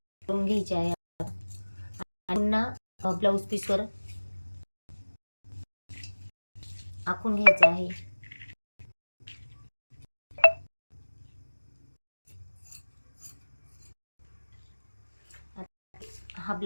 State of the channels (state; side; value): inverted; both; correlation -1.00